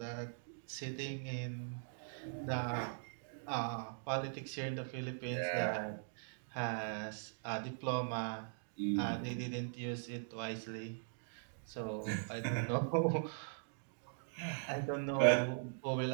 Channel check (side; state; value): left; silent; digital silence